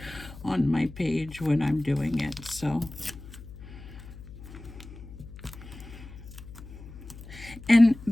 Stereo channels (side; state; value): left; noise; hum, 15 dB below the sound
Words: on my page when I'm doing it. So, and